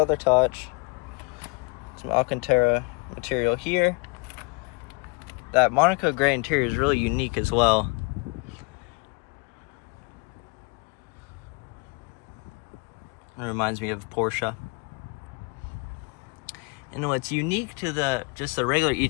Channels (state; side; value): quieter; right; 31.4 dB